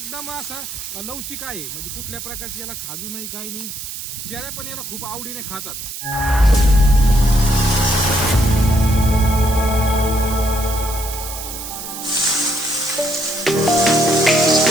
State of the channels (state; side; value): noise; right; hiss, 9 dB below the sound